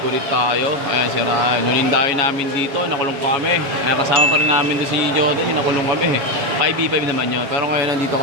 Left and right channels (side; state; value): left; late; 7.2 ms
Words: ulit tayo. Ayan si Ryan. Nulindayo namin dito. Nakulong kami. Ayan, kasama pa rin namin doon si Jordan. Yung nakulong kami. 5v5 naman yun. Pero ngayon nandito